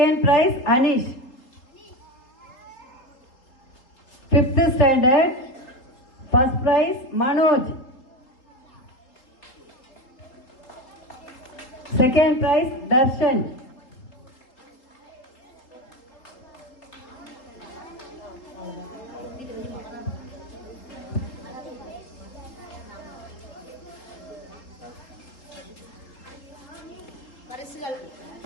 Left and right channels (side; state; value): right; late; 3.7 ms